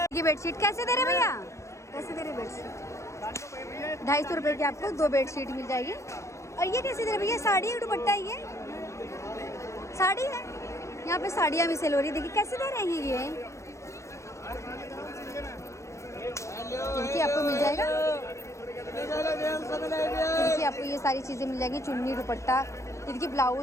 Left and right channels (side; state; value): right; late; 0.14 ms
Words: ये बेडशीट कैसे दे रहे भैया, कैसे दे रहे बेडशीट? 250 रुपए की आपको 2 बेडशीट मिल जाएगी। और ये कैसे दे रहे भैया? साड़ी है दुपट्टा, ये साड़ी है, यहाँ पे साड़ियाँ भी सेल हो रही है। देखिए कैसे दे रहे हैं ये आपको मिल जाएगा। देखिए आपको ये सारी चीज़ें मिल जाएंगी, चुन्नी दुपट्टा। ये देखिए